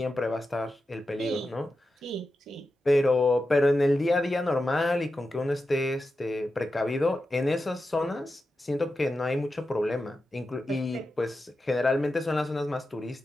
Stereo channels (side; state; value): both; normal; correlation 0.91